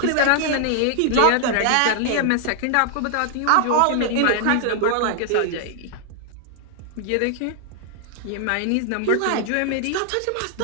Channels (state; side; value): different; both; correlation -0.01